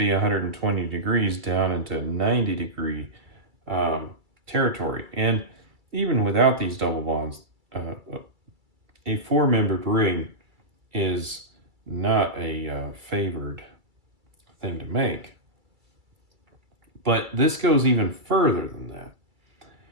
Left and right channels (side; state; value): left; late; 2.3 ms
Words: 120 degrees down into 90 degree territory. And even without these double bonds, a four-membered ring is not a favored thing to make. But this goes even further than that.